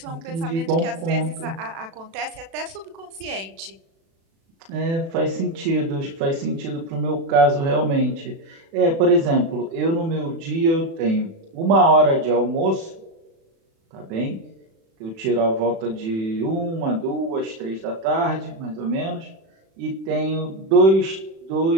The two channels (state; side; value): late; left; 36 ms